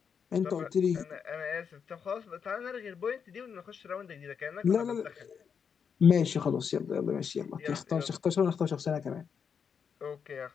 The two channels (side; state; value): right; quieter; 6.8 dB